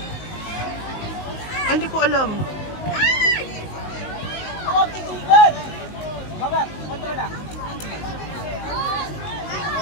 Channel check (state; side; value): late; right; 19 ms